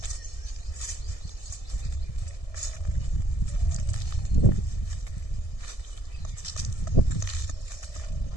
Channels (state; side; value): late; right; 1.7 ms